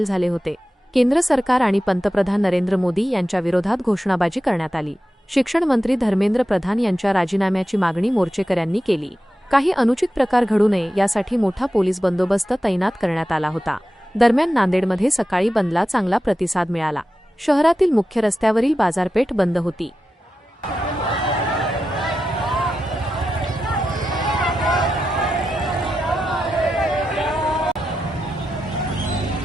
झाले होते। केंद्र सरकार आणि पंतप्रधान नरेंद्र मोदी यांच्या विरोधात घोषणाबाजी करण्यात आली। शिक्षण मंत्री धर्मेंद्र प्रधान यांच्या राजीनाम्याची मागणी मोर्चेकऱ्यांनी केली। काही अनुचित प्रकार घडू नये यासाठी मोठा पोलीस बंदोबस्त तैनात करण्यात आला होता। दरम्यान नांदेडमध्ये सकाळी बंदला चांगला प्रतिसाद मिळाला। शहरातील मुख्य रस्त्यावरील बाजारपेठ बंद होती।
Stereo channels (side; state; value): both; normal; correlation 0.91